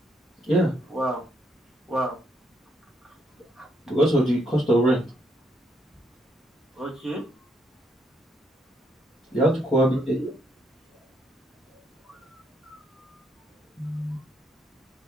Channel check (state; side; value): normal; both; correlation 0.73